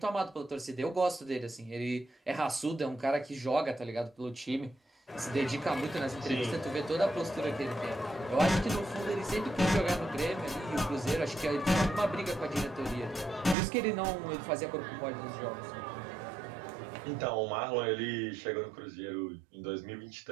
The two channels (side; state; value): left; drops out; at 13.6 s